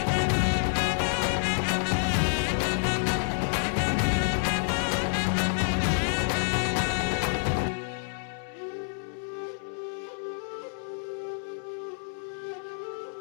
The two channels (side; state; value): right; silent; 58 dB below the other